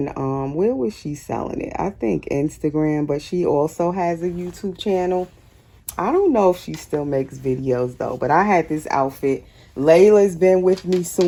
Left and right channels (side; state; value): both; identical; correlation 1.00